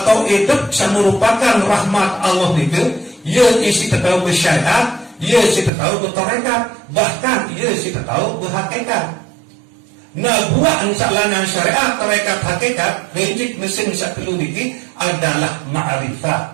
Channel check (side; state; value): left; drops out; at 5.7 s